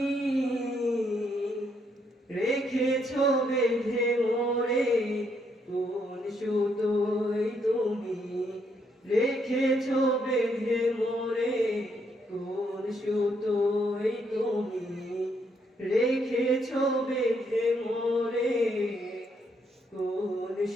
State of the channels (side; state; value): both; normal; correlation 0.74